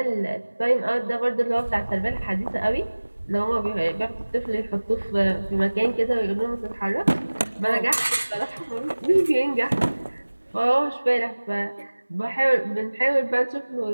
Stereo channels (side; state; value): both; inverted; correlation -1.00